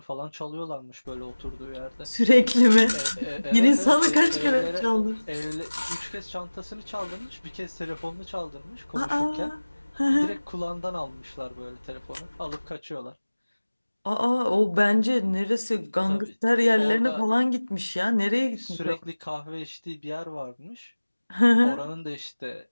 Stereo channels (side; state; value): both; inverted; correlation -1.00